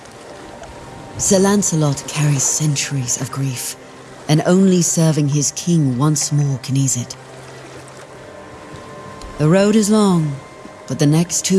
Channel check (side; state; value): both; identical; correlation 1.00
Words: Sir Lancelot carries centuries of grief, and only serving his king once more can ease it. The road is long, but the next